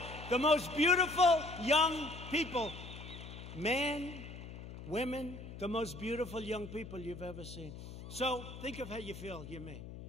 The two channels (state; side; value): noise; left; hum, 12 dB below the sound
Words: The most beautiful young people, men, women, the most beautiful young people you've ever seen. So think of how you feel, you me.